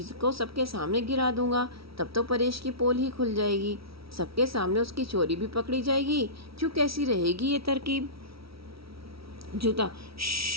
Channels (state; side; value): late; left; 0.75 ms